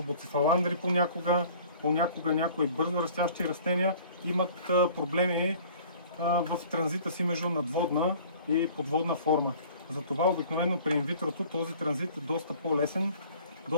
буцефаландри понякога някои бързо растящи растения имат проблеми в транзита си между надводна и подводна форма. Затова обикновено при инвитрото този транзит е доста по-лесен,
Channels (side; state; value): both; inverted; correlation -0.49